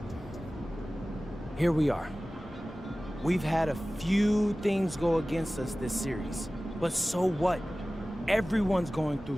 here we are. We've had a few things go against us this series, but so what? Everyone's going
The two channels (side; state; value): both; normal; correlation 0.97